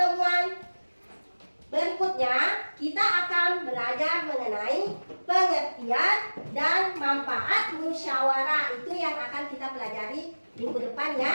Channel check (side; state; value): both; inverted; correlation -1.00